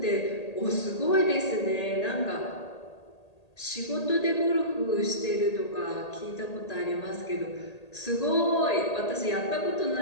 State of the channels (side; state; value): right; late; 1.8 ms